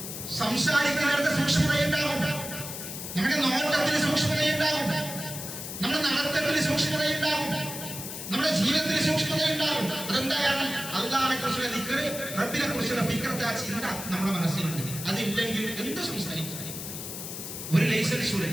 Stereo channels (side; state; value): left; noise; hiss, 8 dB below the sound